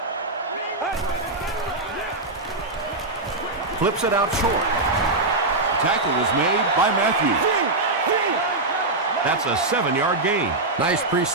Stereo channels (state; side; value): quieter; left; 3.0 dB